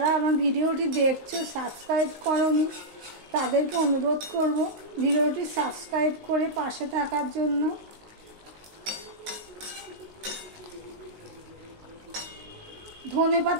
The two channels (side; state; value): left; late; 19 ms